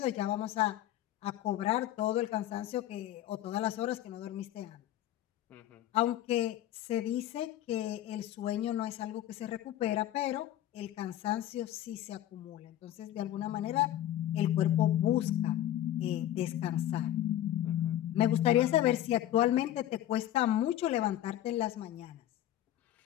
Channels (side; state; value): right; quieter; 12.7 dB